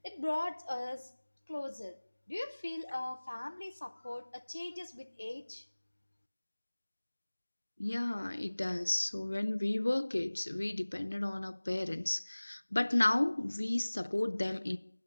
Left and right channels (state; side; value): inverted; both; correlation -1.00